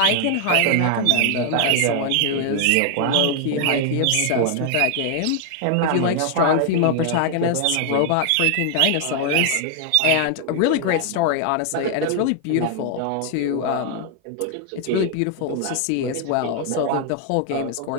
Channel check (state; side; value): different; both; correlation 0.00